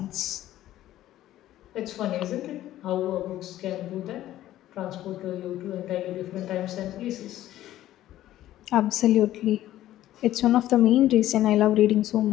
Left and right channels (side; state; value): right; quieter; 13.7 dB